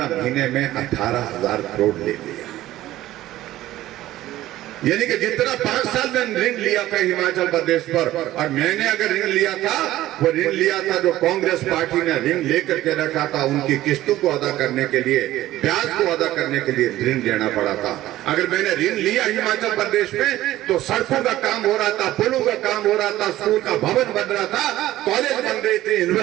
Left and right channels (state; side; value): quieter; left; 15.0 dB